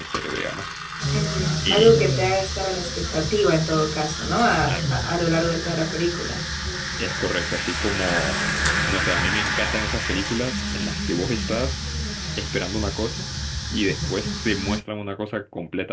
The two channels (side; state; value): both; identical; correlation 1.00